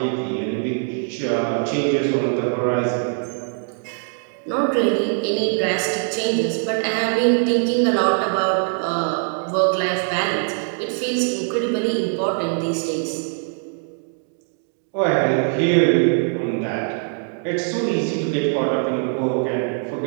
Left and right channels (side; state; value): left; silent; 58 dB below the other